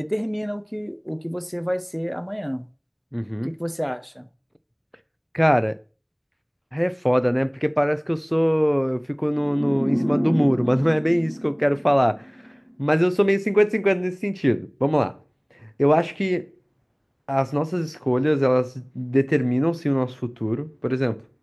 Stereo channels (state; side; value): identical; both; correlation 1.00